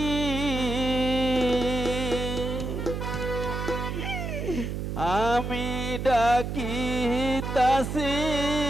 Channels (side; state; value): right; noise; hum, 4 dB below the sound